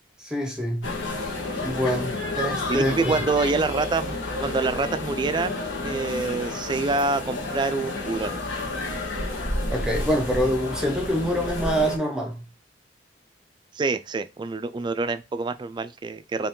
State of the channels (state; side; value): normal; both; correlation 0.46